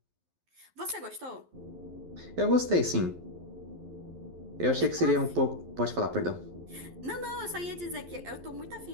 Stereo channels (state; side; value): late; left; 11 ms